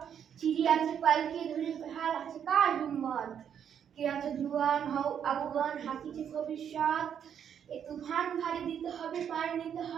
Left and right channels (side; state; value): left; quieter; 8.5 dB